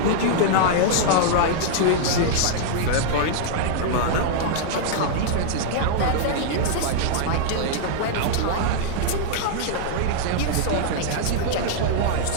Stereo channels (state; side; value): different; both; correlation -0.01